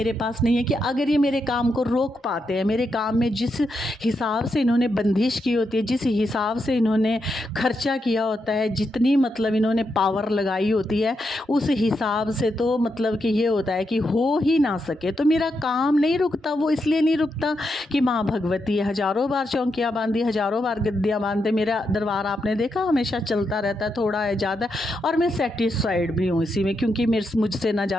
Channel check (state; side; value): normal; both; correlation 0.83